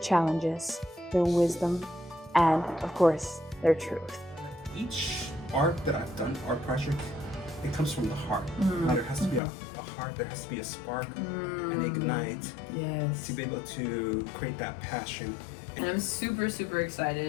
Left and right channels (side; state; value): right; drops out; at 9.4 s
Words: their wisdom, and, of course, their truth. Each art that I've done, art project, it comes from the heart. There has to be a heart, there has to be a spark, an ignite to be able to create that passion. And I'm super